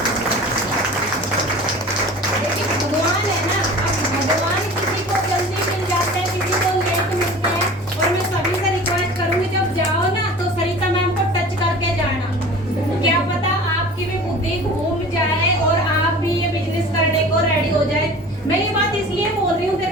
भगवान है ना, अब भगवान किसी को जल्दी मिल जाते हैं, किसी को लेट मिलते हैं। और मैं सभी से रिक्वेस्ट करूंगी जब जाओ ना तो सरिता मैम को टच करके जाना, क्या पता आपकी भी बुद्धि घूम जाए और आप भी ये बिजनेस करने को रेडी हो जाए। मैं ये बात इसलिए बोल रही हूँ,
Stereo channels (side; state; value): both; normal; correlation 0.41